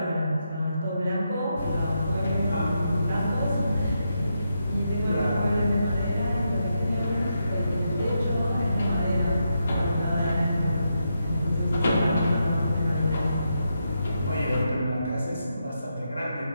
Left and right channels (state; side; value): inverted; both; correlation -0.83